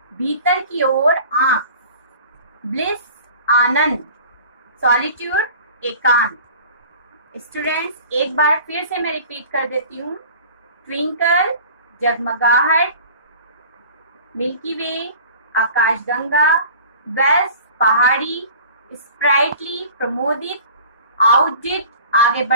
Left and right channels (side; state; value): both; inverted; correlation -0.43